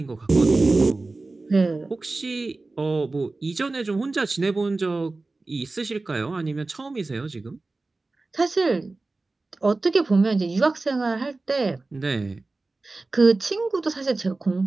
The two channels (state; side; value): quieter; left; 3.4 dB